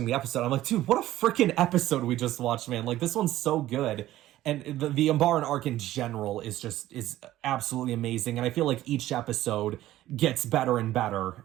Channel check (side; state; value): left; quieter; 14.6 dB